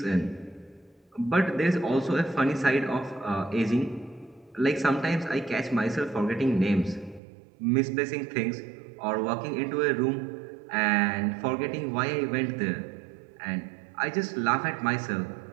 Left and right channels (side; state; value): left; drops out; at 7.2 s